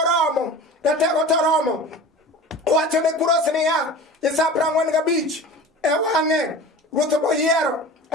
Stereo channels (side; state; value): both; normal; correlation 0.37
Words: Ratego toromo. Wacho ne Kuros niya, Isa 45 e wang'e ruoth moyiero,